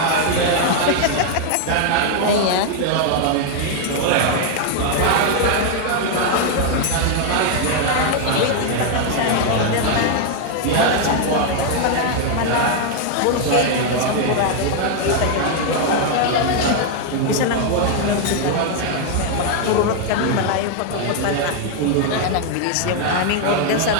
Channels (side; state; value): both; different; correlation 0.00